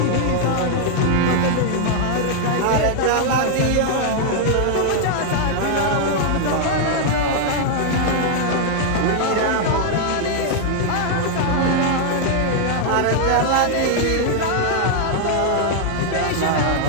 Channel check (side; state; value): both; different; correlation 0.00